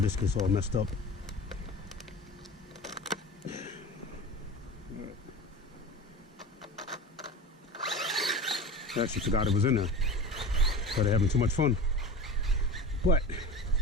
gets all messed up. Right. I actually forgot it was in there. Started having too much fun. But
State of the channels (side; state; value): both; normal; correlation 0.32